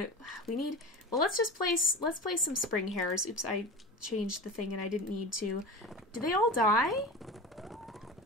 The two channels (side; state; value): both; normal; correlation 0.30